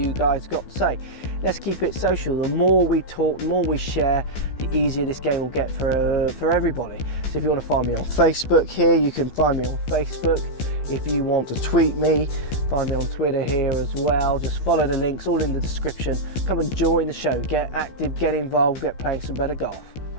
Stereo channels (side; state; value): right; late; 15 ms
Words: guys got to say. Let's keep it social. The more we talk, the more we share, the easier this game will get for everybody. So if you want to find me on Facebook here, you can find me on Facebook. If you want to tweet me, find me on Twitter here as well. Just follow the links, all in the description. Come and join the show, get active, get involved, get playing some better golf.